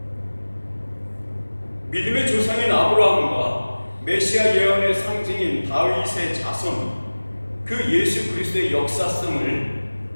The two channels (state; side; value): inverted; both; correlation -1.00